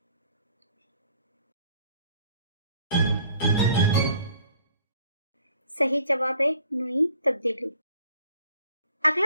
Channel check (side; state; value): both; inverted; correlation -0.57